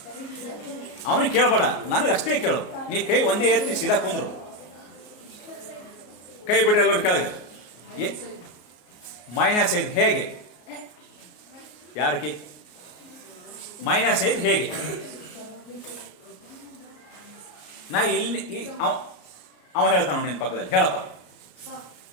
ಅವನಿಗೆ ಕೇಳಬೇಡ, ನನಗೆ ಅಷ್ಟೇ ಕೇಳು. ನೀ ಕೈ ಒಂದೇ ಎತ್ತಿ ಸೀದಾ ಕುಂದ್ರು, ಕೈ ಬಿಡ್ರಿ ಎಲ್ಲರೂ ಕೆಳಗೆ. -5 ಹೇಗೆ? ಯಾರಕ್ಕೆ -5 ಹೇಗೆ? ನಾ ಇಲ್ಲಿ ಅವ ಹೇಳ್ತಾನ ನಿನ್ನ ಪಕ್ಕದಲ್ಲಿ, ಹೇಳಪ್ಪ.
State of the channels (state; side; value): late; right; 33 ms